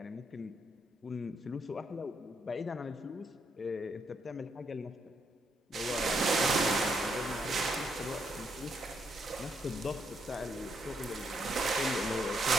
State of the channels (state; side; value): normal; both; correlation 0.77